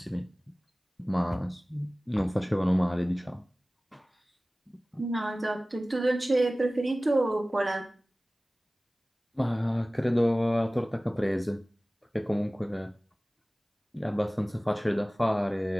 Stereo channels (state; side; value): normal; both; correlation 0.98